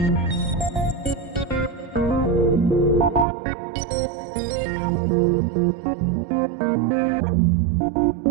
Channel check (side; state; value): left; drops out; at 3.2 s